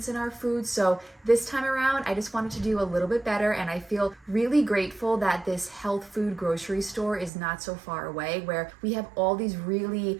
in our food. So this time around, I just wanted to do a little bit better, and I feel really grateful that this health food grocery store is not so far away, where we have all these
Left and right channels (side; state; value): left; drops out; at 7.3 s